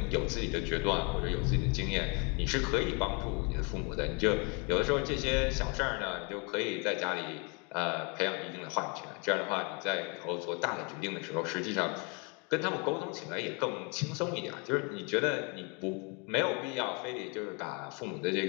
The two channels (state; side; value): quieter; right; 32.8 dB